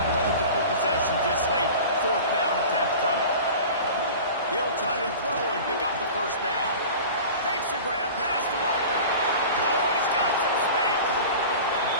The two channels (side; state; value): both; inverted; correlation -0.37